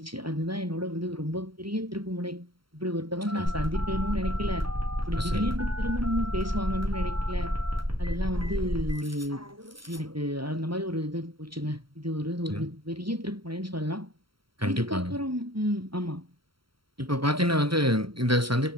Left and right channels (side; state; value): left; late; 0.74 ms